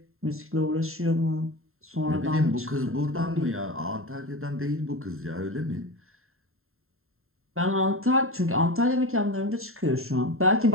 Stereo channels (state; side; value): late; left; 0.61 ms